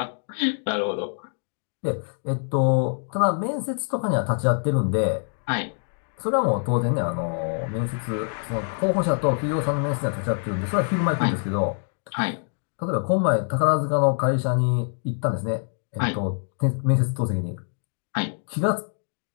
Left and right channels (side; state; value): right; silent; 62 dB below the other